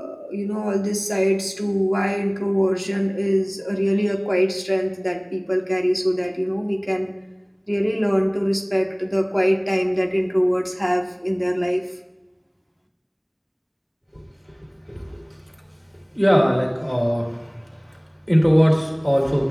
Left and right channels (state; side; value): identical; both; correlation 1.00